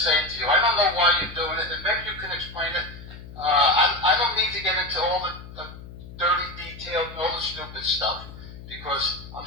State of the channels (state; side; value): noise; left; hum, 15 dB below the sound